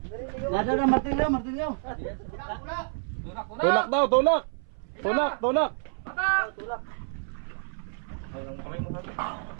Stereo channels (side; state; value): left; silent; 59 dB below the other